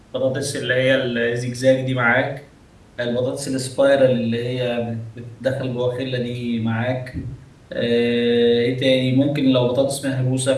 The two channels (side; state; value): both; identical; correlation 1.00